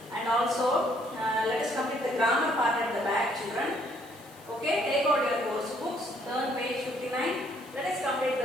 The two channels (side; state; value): left; noise; hiss, 24 dB below the sound